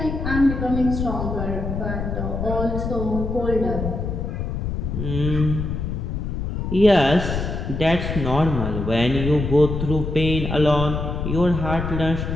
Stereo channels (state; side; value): noise; left; rumble, 3 dB below the sound